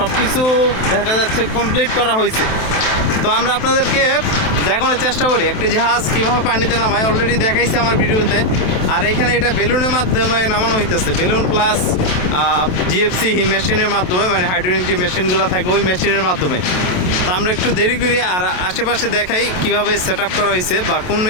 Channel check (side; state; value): right; late; 27 ms